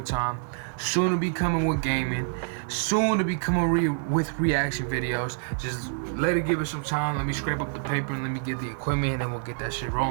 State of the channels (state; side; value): silent; left; 60 dB below the other